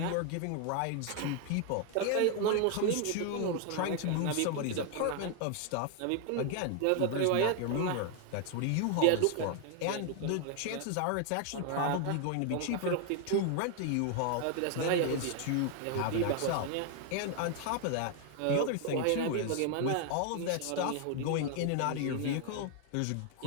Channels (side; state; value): both; different; correlation 0.00